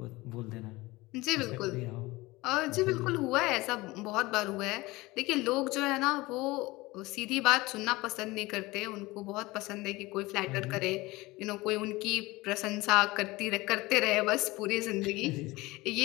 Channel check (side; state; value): right; quieter; 21.0 dB